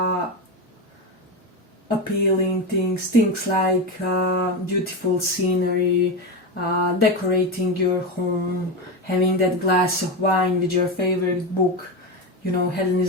appealing things like beautiful scenery, decorating your home, having that glass of wine with your favorite book. You know,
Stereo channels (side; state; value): both; normal; correlation 0.16